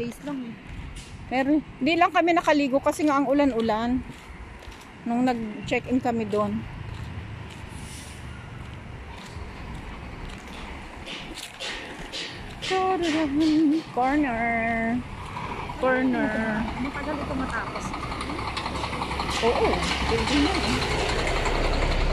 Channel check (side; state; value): both; identical; correlation 1.00